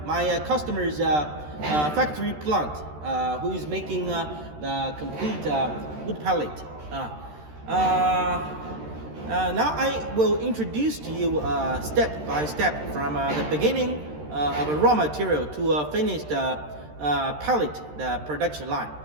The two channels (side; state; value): left; late; 13 ms